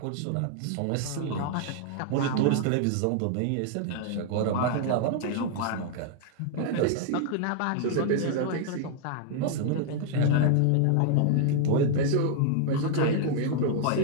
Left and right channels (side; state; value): both; different; correlation 0.00